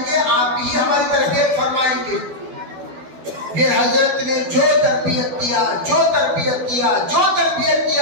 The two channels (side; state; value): left; late; 12 ms